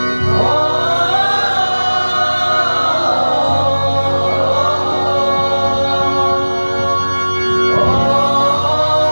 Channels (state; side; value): inverted; both; correlation -1.00